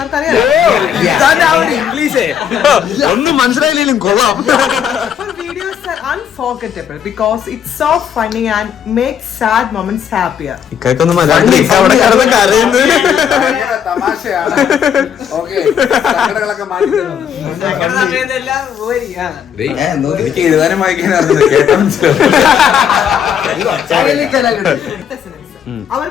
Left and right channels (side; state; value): right; quieter; 8.4 dB